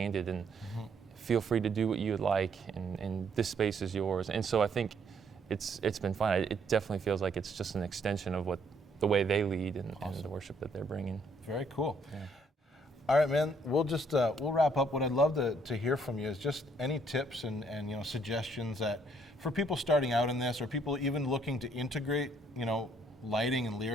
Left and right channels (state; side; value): normal; both; correlation 0.68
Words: and feel free to do what you would like, and this space is yours. And so I think it's been fun. It definitely feels like it's just an extension of the way they lead and the worship that they're bringing. Very cool. Yeah. All right, man. We'll just we'll wrap up. What I'd love to hear from you is just any tips and suggestions that for people starting out in this, or people even looking to integrate lighting and